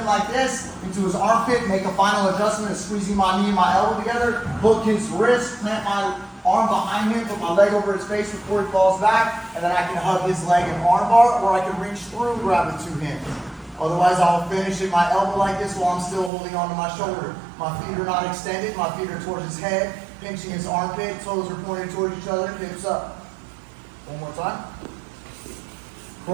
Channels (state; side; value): drops out; left; at 16.3 s